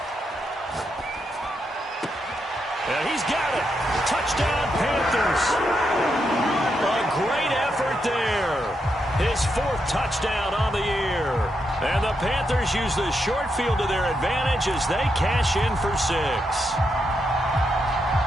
And he's got it. Touchdown, Panthers. A great effort there. His 4th touchdown on the year. And the Panthers use the short field to their advantage as they cash in for 6.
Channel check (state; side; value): normal; both; correlation 0.82